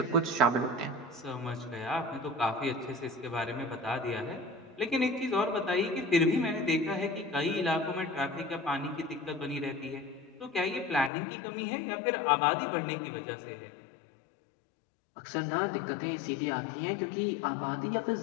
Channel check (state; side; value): drops out; right; at 11.1 s